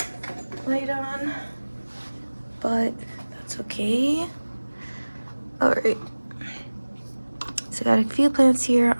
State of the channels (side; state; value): both; inverted; correlation -1.00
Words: light on, but that's okay. All right. So I got a few plants here